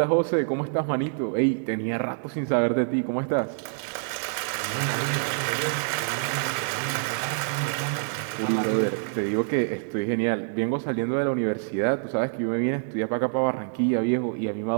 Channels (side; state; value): left; silent; 61 dB below the other